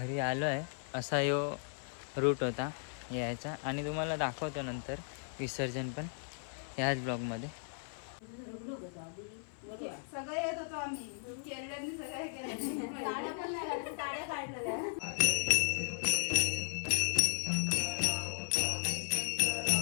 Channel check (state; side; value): silent; right; 54 dB below the other